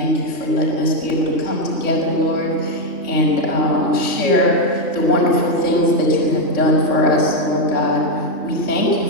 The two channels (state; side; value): late; right; 3.5 ms